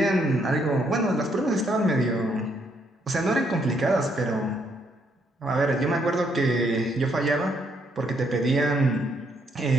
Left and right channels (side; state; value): both; normal; correlation 0.73